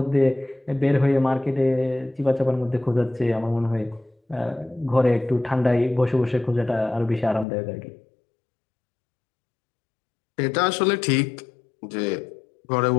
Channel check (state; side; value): drops out; right; at 7.5 s